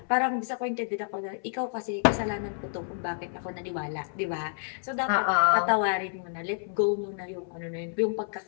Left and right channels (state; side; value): silent; right; 58 dB below the other